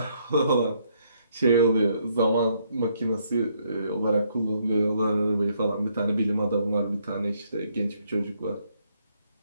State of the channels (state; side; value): inverted; both; correlation -0.71